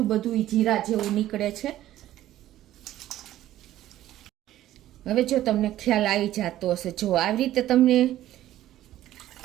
બધું જીરા જેવું નીકળે છે। હવે જો તમને ખ્યાલ આવી જતો હશે, જો આવી રીતે તમને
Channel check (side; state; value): left; quieter; 13.6 dB